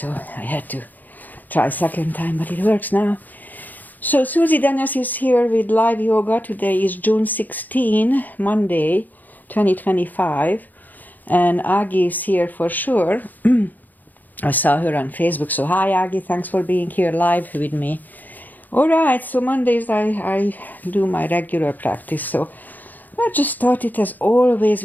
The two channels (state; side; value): late; right; 0.084 ms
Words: I had to try second time, but it works now. So Susie Dennis is here with live yoga. Today is June 16, Monday, 2025. And Agi is here for sure. I saw her on Facebook. So hi, Agi. Thanks for being here live with me. All right. So Mondays I do my regular practice. So I just started as always